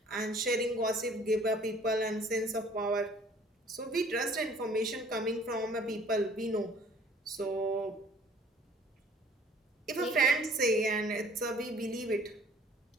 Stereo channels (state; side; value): normal; both; correlation 0.54